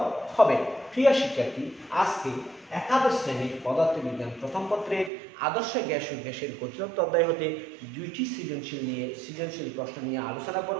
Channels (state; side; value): drops out; left; at 5.1 s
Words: হবে। প্রিয় শিক্ষার্থী, আজকে একাদশ শ্রেণীর পদার্থবিজ্ঞান প্রথম পত্রের আদর্শ গ্যাস ও গ্যাসের গতিতত্ত্ব অধ্যায় হতে দুইটি সৃজনশীল প্রশ্ন নিয়ে আলোচনা